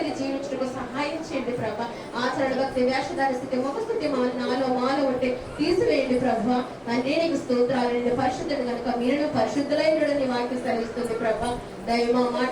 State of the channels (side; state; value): both; identical; correlation 1.00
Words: జీవించడానికి సహాయం చేయండి. ప్రభా ఆచరణ, భక్తి, వేషధార స్థితి, ముఖస్థితి నాలో మాలో ఉంటే తీసివేయండి. ప్రభా తండ్రి నీకు స్తోత్రాలు. నేను పరిశుద్ధుడు కనుక మీరు పరిశుద్ధులైనడని వాక్యం సెలవిస్తుంది. ప్రభా దైవ మాట